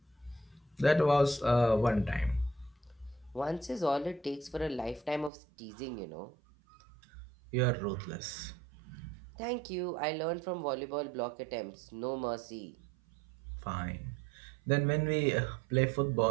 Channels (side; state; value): left; drops out; at 5.3 s